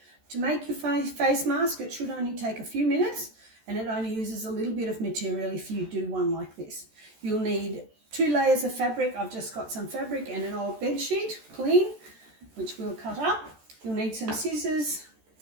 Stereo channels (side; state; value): left; late; 14 ms